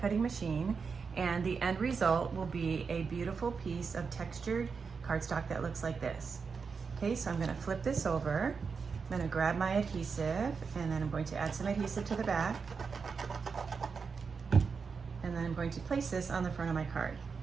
cutting machine, and the end result will be a beautiful piece of textured cardstock that looks like this. Okay, so I'm going to flip this over. I'm going to grab my adhesive, and then I'm going to add some adhesive to the back. And then I'm going to place this on the front of my card.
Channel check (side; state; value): left; quieter; 5.4 dB